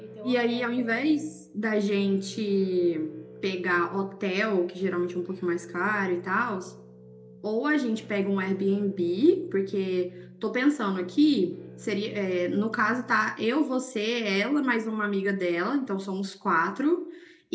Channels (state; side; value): identical; both; correlation 1.00